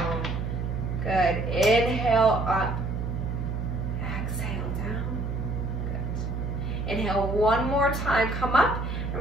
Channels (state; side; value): noise; right; hum, 3 dB below the sound